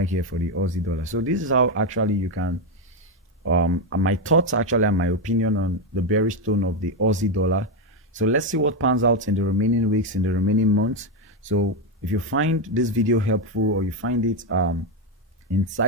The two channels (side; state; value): both; normal; correlation 0.08